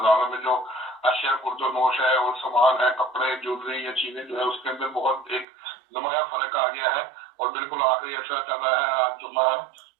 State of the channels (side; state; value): left; drops out; at 5.5 s